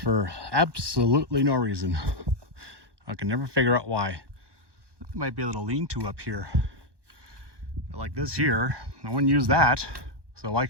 absolutely no reason. I can never figure out why. There might be a little lean-to up here. But like this here, no one used that, so I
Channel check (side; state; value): left; late; 1.2 ms